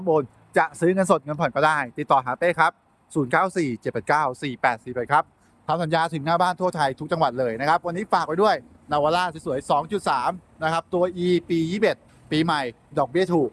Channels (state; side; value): identical; both; correlation 1.00